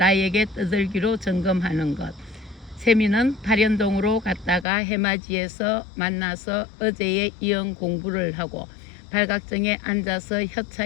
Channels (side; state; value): right; drops out; at 4.7 s